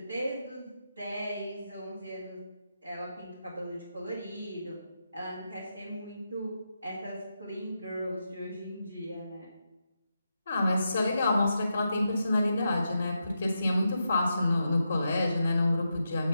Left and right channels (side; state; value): both; inverted; correlation -0.86